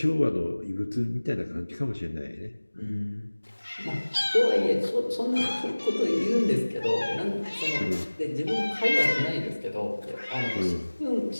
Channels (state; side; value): inverted; both; correlation -1.00